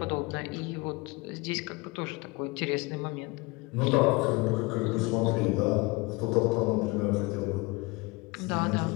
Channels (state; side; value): quieter; right; 24.6 dB